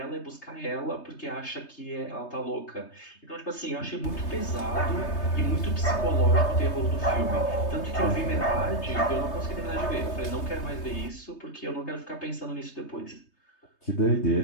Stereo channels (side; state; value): right; late; 3.3 ms